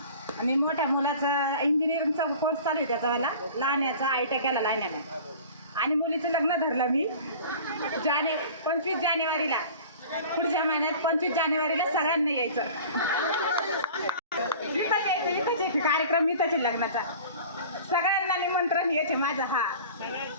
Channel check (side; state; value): both; inverted; correlation -0.41